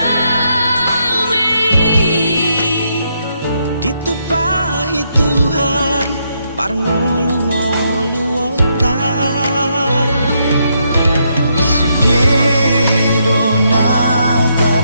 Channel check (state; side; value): inverted; both; correlation -0.77